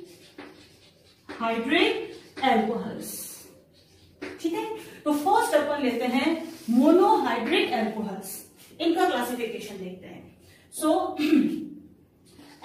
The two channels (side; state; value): both; identical; correlation 1.00